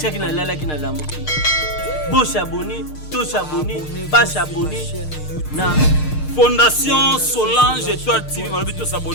na lala ki na lamuki. Bo s'abonner, to s'abonner, ba s'abonner na Fondation Solange Étoile TV. Malobi to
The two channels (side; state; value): right; late; 6.6 ms